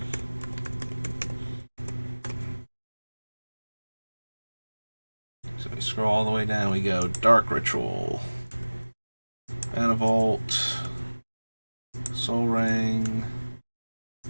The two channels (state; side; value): inverted; both; correlation -1.00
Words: So we scroll all the way down, we go Dark Ritual, Mana Vault, Soul Ring,